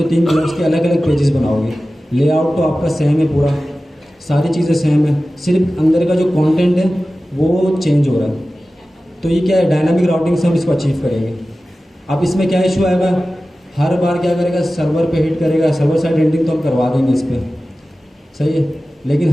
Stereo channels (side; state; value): both; normal; correlation 0.95